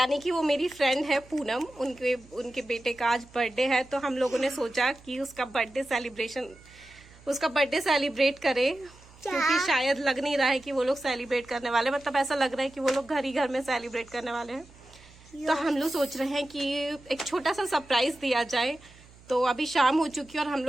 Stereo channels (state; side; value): noise; right; hum, 24 dB below the sound